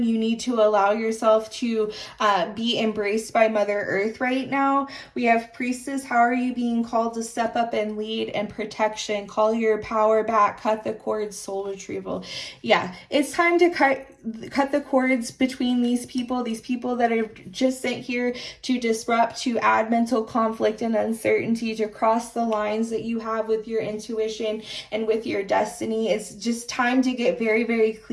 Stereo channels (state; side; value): identical; both; correlation 1.00